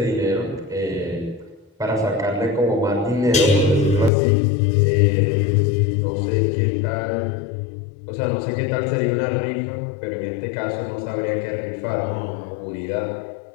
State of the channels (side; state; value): right; drops out; at 4.1 s